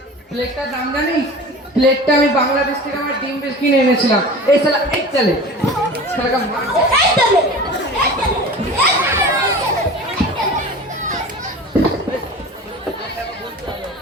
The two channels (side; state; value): both; normal; correlation 0.37